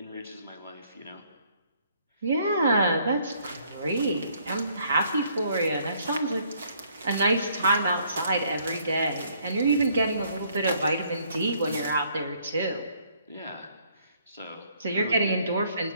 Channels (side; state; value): both; inverted; correlation -0.65